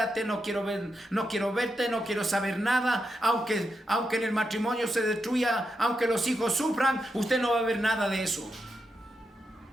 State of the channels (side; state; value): both; normal; correlation 0.85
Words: no quiero verte, no quiero saber nada. Aunque en el matrimonio se destruya, aunque los hijos sufran, usted no va a ver nada de eso.